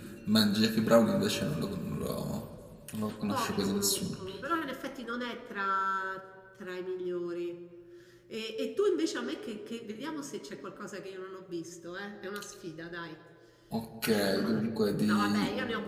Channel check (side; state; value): both; identical; correlation 1.00